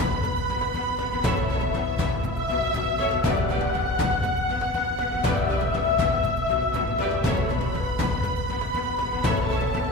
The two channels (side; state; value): both; normal; correlation 0.38